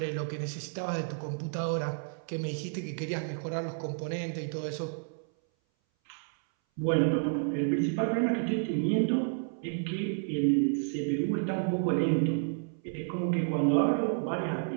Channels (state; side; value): silent; left; 57 dB below the other